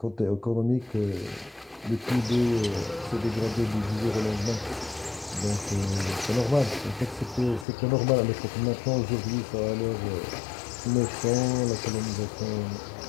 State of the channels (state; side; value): drops out; right; at 7.7 s